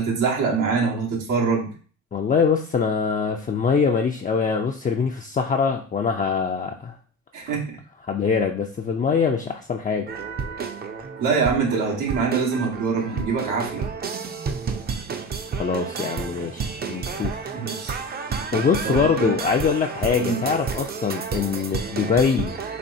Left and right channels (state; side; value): normal; both; correlation 0.28